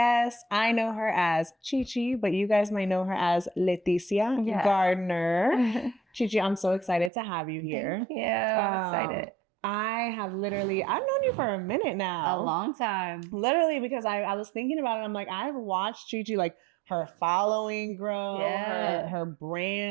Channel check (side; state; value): left; drops out; at 7.1 s